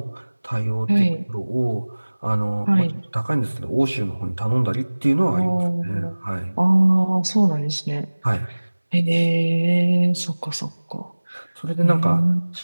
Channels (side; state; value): both; inverted; correlation -1.00